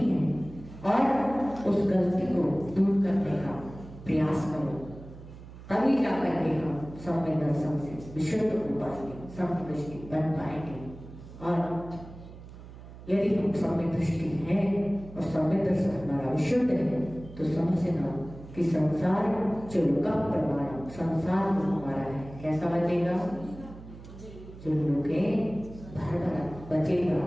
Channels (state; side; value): noise; right; hum, 16 dB below the sound